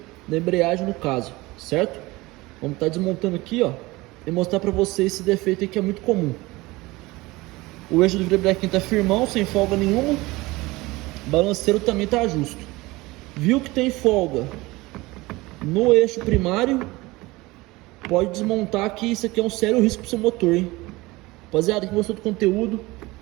da embreagem no caso, certo? Vamos estar desmontando aqui, ó, e mostrar para vocês esse defeito aqui que é muito comum. O eixo do virabrequim tá firmão, sem folga nenhuma. O balanceiro também tá justo. Viu que tem folga no eixo primário, pode desmontar, que isso aqui é um sério risco pro seu motor, hein? Rapaziada, quem gostou do conteúdo,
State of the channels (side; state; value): left; quieter; 21.2 dB